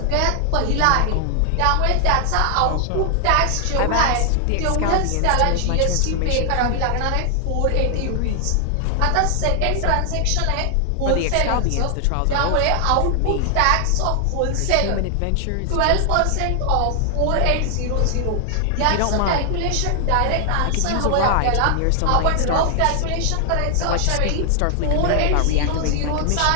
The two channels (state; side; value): different; both; correlation 0.00